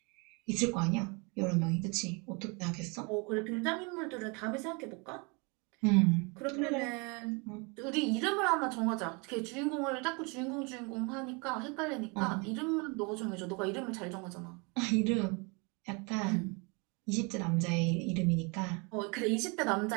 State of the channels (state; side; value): quieter; left; 30.9 dB